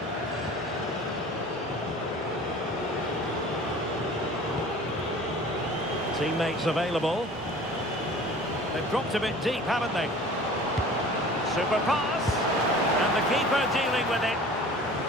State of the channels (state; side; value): normal; both; correlation 0.44